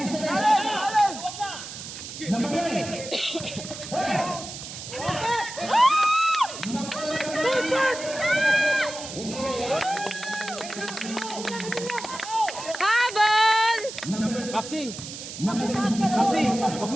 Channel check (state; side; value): noise; right; hiss, 10 dB below the sound